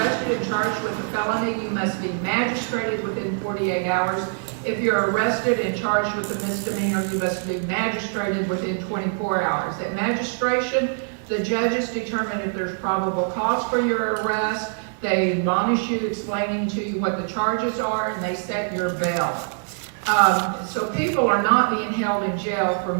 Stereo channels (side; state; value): left; silent; 63 dB below the other